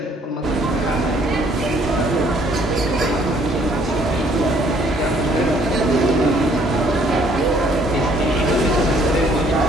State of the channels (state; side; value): normal; both; correlation 0.62